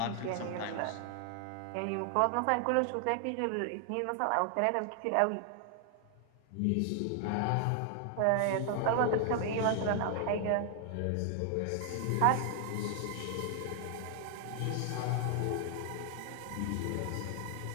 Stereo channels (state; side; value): different; both; correlation 0.00